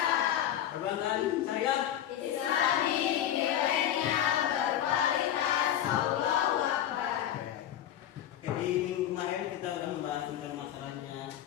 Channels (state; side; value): quieter; right; 11.1 dB